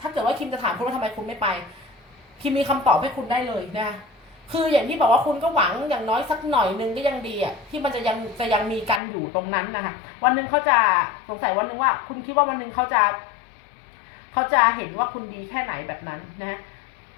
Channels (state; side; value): drops out; right; at 9.0 s